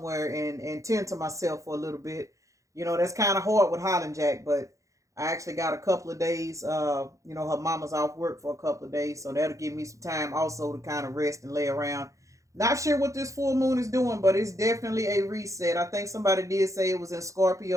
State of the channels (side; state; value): left; late; 0.15 ms